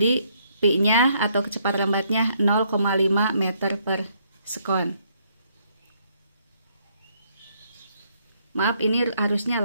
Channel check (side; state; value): both; inverted; correlation -0.70